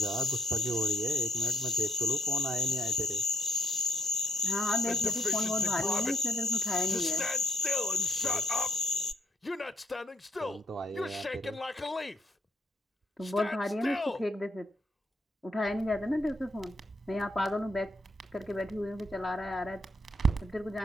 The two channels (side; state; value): both; normal; correlation 0.67